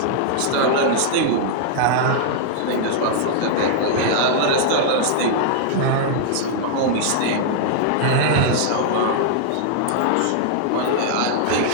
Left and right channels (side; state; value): both; different; correlation -0.01